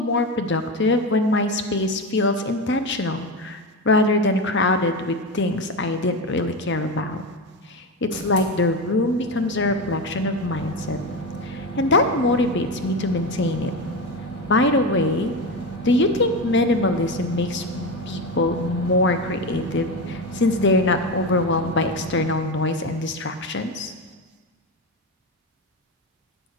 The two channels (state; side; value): normal; both; correlation 0.18